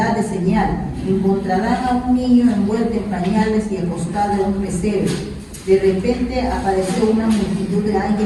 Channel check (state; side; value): identical; both; correlation 1.00